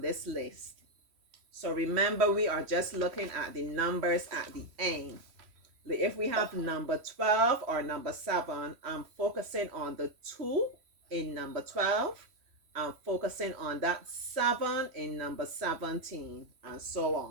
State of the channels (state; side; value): late; left; 3.1 ms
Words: list. So remember, we are just looking at the numbers at the end. If we have number 12 or number 7, I'm focusing on the 2 in number 12. I'm focusing on that 7 in number 17, and so